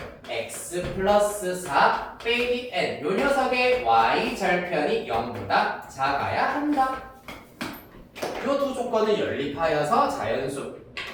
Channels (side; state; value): both; identical; correlation 1.00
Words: x 플러스 4 빼기 n 요 녀석의 y절편이 0보다 작아야 한다. 요 두 조건을 연립하여서 자연수